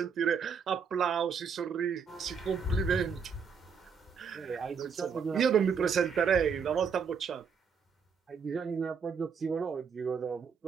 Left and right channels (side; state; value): left; quieter; 6.2 dB